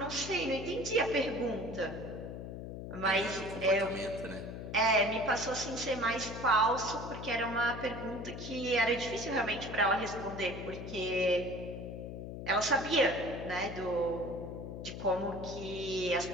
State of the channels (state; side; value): noise; left; hum, 8 dB below the sound